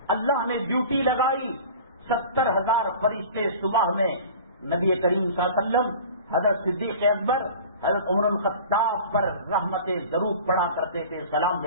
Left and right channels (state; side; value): inverted; both; correlation -0.40